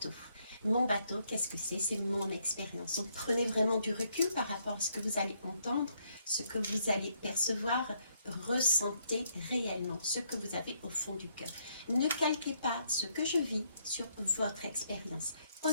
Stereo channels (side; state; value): both; inverted; correlation -0.73